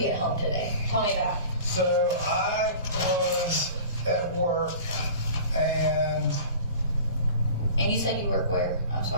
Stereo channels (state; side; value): inverted; both; correlation -0.40